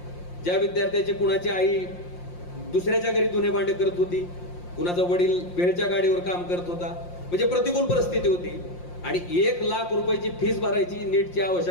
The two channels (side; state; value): right; late; 5.7 ms